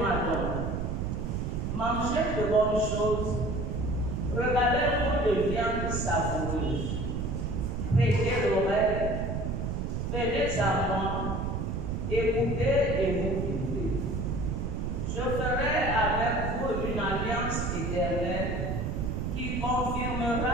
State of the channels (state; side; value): noise; right; rumble, 2 dB below the sound